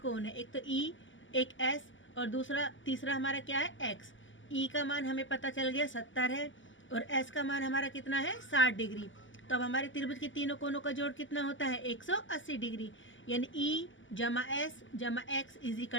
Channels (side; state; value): right; late; 0.55 ms